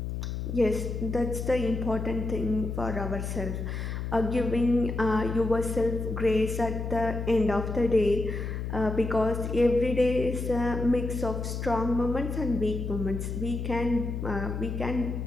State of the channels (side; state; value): left; noise; hum, 4 dB below the sound